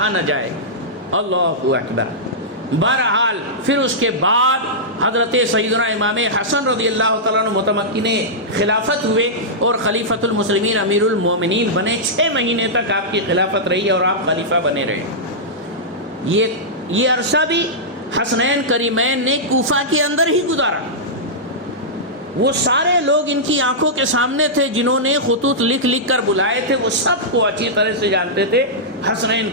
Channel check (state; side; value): normal; both; correlation -0.12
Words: نہ جائے۔ اللہ اکبر۔ بہرحال پھر اس کے بعد حضرت سیدنا امام حسن رضی اللہ تعالیٰ عنہ متمکن خلافت ہوئے اور خلیفۃ المسلمین امیر المومنین بنے۔ 6 مہینے تک آپ کی خلافت رہی اور آپ خلیفہ بنے رہے۔ یہ عرصہ بھی حسنین کریمین نے کوفہ کے اندر ہی گزارا۔ وہ سارے لوگ ان کی آنکھوں کے سامنے تھے، جنہوں نے خطوط لکھ لکھ کر بلائے تھے، وہ سب کو اچھی طرح سے جانتے تھے حسنین